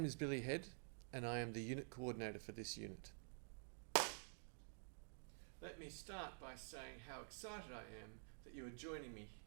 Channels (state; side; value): silent; left; digital silence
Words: is Billy Head and I am the unit coordinator for this unit. Let me start by saying how excited I am that you are joining me